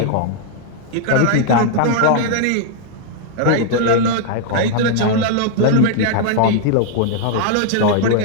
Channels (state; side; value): different; both; correlation -0.01